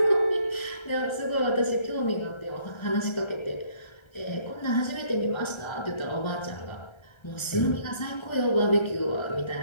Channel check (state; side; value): late; right; 1.3 ms